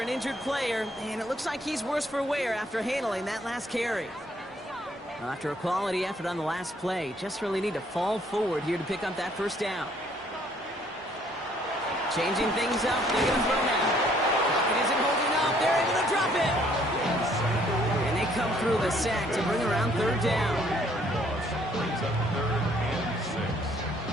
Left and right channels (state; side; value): normal; both; correlation 0.64